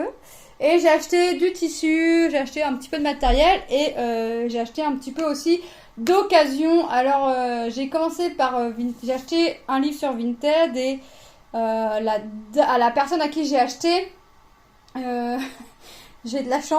Et j'ai acheté du tissu, j'ai acheté un petit peu de matériel et j'ai acheté un petit peu aussi d'occasion. Alors j'ai commencé par j'ai acheté un livre sur Vinted et à la personne à qui j'ai acheté, euh, j'ai de la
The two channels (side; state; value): both; identical; correlation 1.00